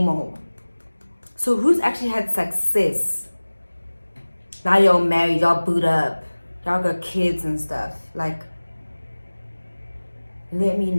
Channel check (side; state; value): both; inverted; correlation -1.00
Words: old. So who's actually had success? Now y'all married, y'all boot up, y'all got kids and stuff. Like, let me